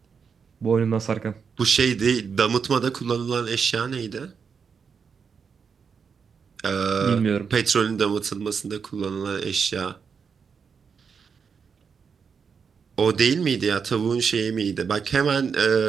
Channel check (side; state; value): left; quieter; 6.1 dB